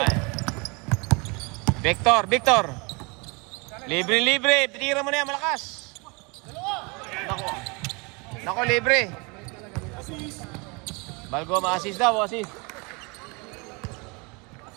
Victor. Libre. Pitira mo na yan, malakas. Nako, libre. Balgo, ma-assist daw, assist.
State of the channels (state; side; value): quieter; left; 29.5 dB